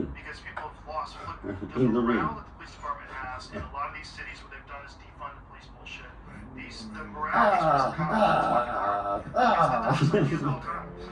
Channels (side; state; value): both; identical; correlation 1.00